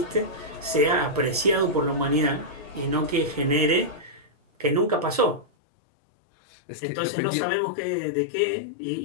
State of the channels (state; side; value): drops out; right; at 5.5 s